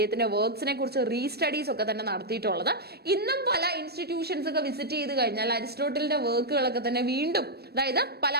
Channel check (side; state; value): left; late; 0.47 ms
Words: വർക്ക്സിനെ കുറിച്ച് റീസ്റ്റഡീസ് ഒക്കെ തന്നെ നടത്തിയിട്ടുള്ളത്. ഇന്നും പല ഇൻസ്റ്റിറ്റ്യൂഷൻസ് ഒക്കെ വിസിറ്റ് ചെയ്ത് കഴിഞ്ഞാൽ അരിസ്റ്റോട്ടലിന്റെ വർക്കുകളൊക്കെ തന്നെ വീണ്ടും, അതായത് പല